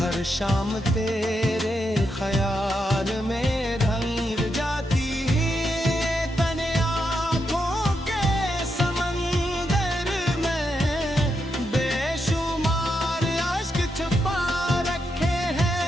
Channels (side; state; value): both; normal; correlation 0.83